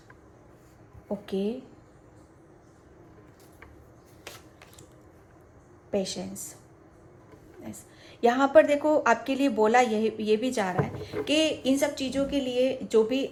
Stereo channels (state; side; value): identical; both; correlation 1.00